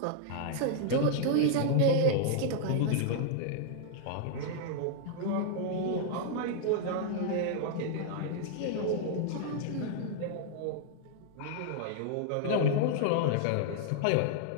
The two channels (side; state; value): both; different; correlation -0.01